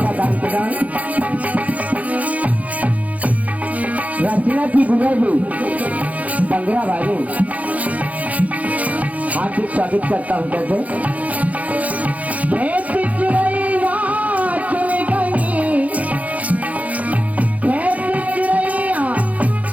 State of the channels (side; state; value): left; late; 0.071 ms